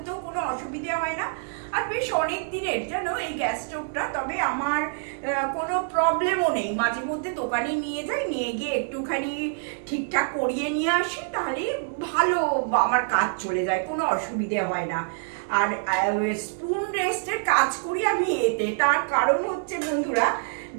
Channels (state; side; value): silent; left; digital silence